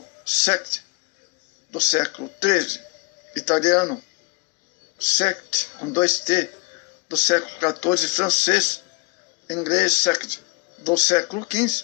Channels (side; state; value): right; quieter; 28.6 dB